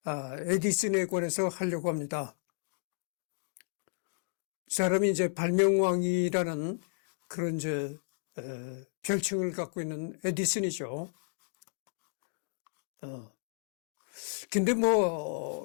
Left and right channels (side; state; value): right; silent; digital silence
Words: 에디슨에 관해서 하려고 합니다. 이 사람이 이제 발명왕이라는 그런 별칭을 갖고 있는 에디슨이죠. 근데